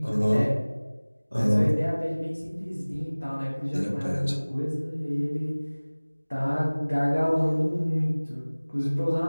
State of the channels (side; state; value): both; inverted; correlation -1.00